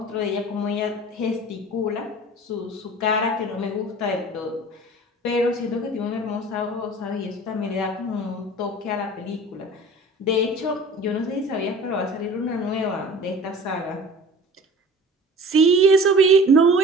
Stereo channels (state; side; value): normal; both; correlation 0.42